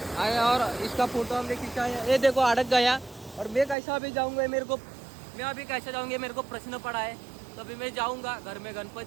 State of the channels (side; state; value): left; drops out; at 3.8 s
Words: आए और इसका फोटो हमने खींचा है. ये देखो अड़क गया और मैं कैसा अभी जाऊँगा. मैं अभी कैसे जाऊँगी मेरे को प्रश्न पड़ा है. तभी मैं जाऊँगा. घर में